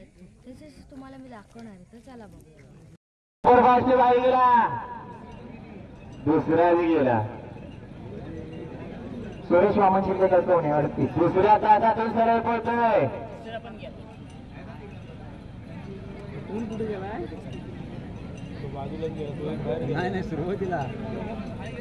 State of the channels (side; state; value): both; identical; correlation 1.00